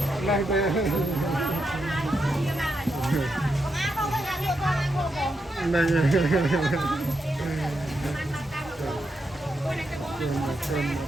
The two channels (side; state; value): both; normal; correlation 0.84